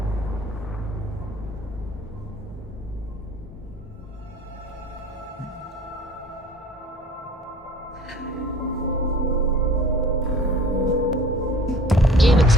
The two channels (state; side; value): normal; both; correlation 0.48